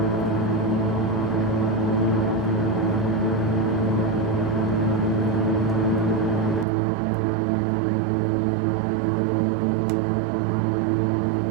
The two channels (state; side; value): drops out; left; at 6.7 s